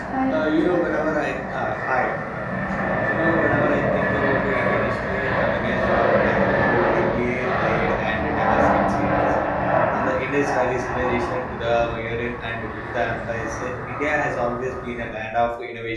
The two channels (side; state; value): both; identical; correlation 1.00